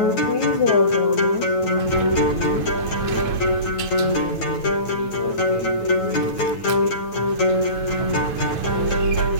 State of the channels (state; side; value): late; right; 9.2 ms